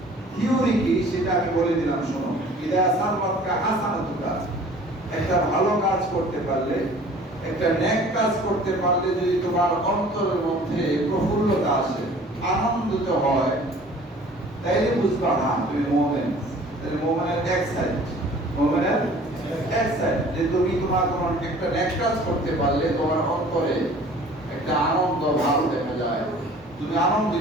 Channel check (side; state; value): both; normal; correlation 0.49